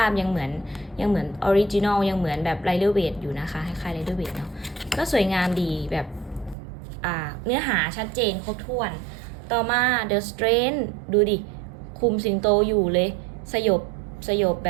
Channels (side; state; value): left; drops out; at 6.6 s